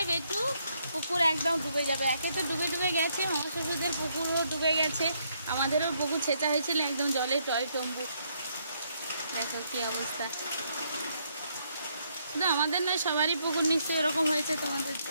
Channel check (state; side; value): inverted; both; correlation -0.73